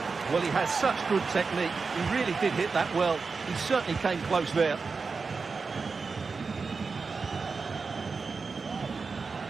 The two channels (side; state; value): left; quieter; 4.7 dB